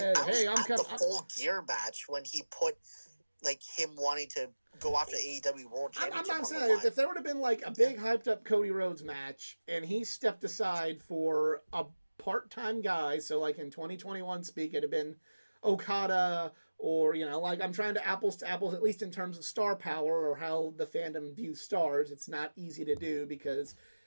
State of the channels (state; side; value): inverted; both; correlation -1.00